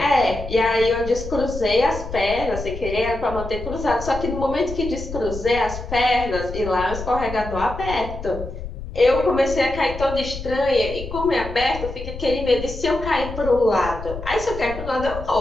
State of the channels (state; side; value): noise; left; rumble, 10 dB below the sound